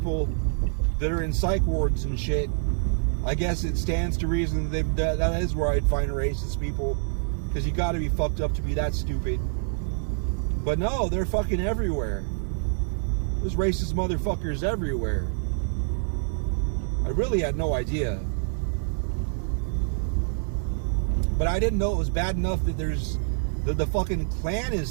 that are in psych wards and shit, I guess it stands to reason that is where I'd find racist people. Because you gotta be fucked up to be that stupid. But no, they're fucking everywhere. There's racist motherfuckers everywhere. I really had no idea. But I didn't know it was bad enough that the fucking Klan is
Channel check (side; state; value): left; silent; digital silence